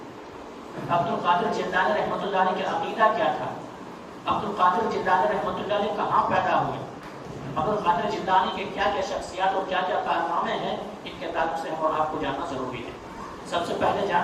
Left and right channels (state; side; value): identical; both; correlation 1.00